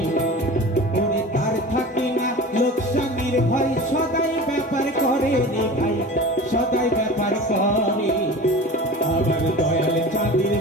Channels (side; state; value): both; normal; correlation 0.36